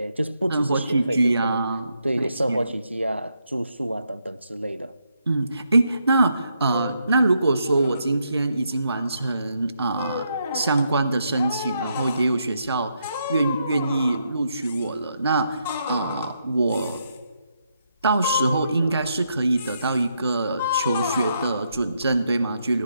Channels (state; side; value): inverted; both; correlation -0.78